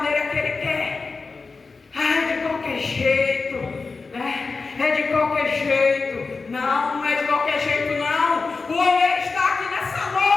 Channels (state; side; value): quieter; right; 4.2 dB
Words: que ele quer. Ah, é de qualquer jeito, né? É de qualquer jeito. Não, não é de qualquer jeito, não. O oleiro está aqui nessa